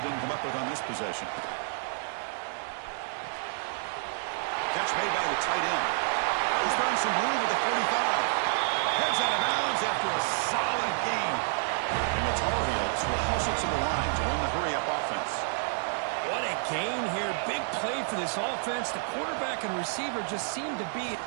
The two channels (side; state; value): left; silent; 58 dB below the other